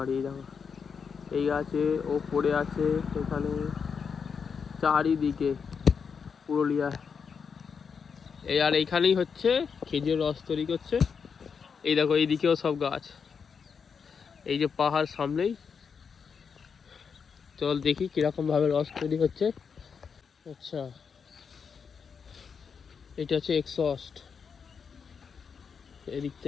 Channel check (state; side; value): quieter; right; 6.2 dB